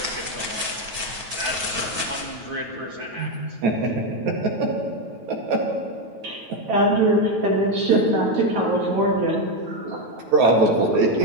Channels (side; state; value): left; late; 9.2 ms